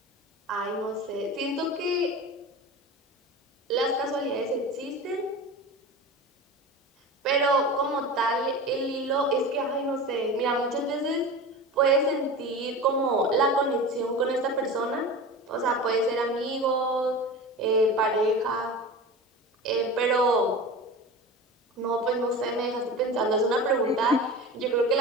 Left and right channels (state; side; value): normal; both; correlation 0.31